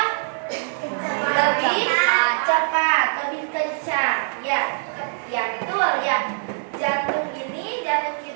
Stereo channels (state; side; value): silent; left; digital silence